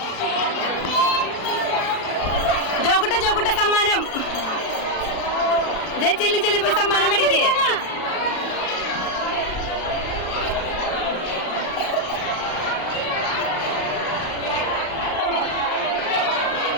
ജോക്കുട്ട സമ്മാനം ചെല്ലി പോയി സമ്മാനം മേടിക്കേ.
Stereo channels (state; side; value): late; right; 36 ms